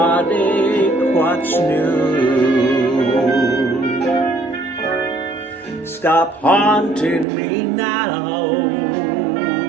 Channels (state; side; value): drops out; left; at 7.2 s